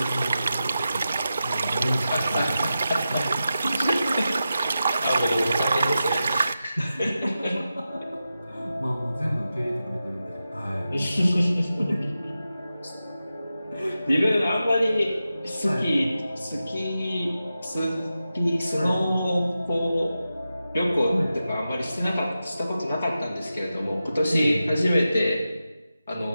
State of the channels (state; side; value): inverted; both; correlation -0.91